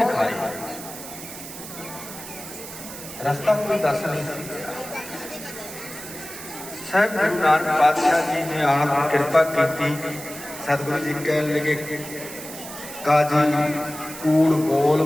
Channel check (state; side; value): noise; right; hiss, 12 dB below the sound